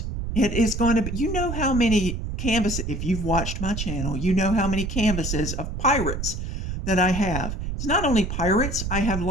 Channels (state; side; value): noise; right; rumble, 4 dB below the sound